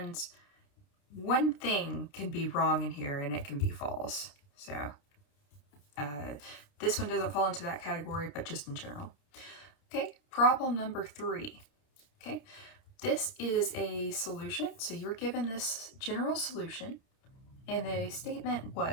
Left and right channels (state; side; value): late; right; 30 ms